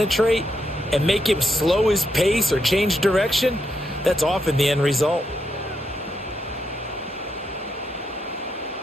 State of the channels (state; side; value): normal; both; correlation 0.81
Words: and make him slow his pace or change direction, that's often the end result.